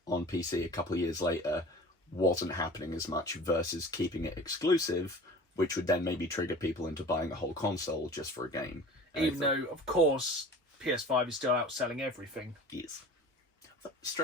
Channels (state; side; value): normal; both; correlation 0.41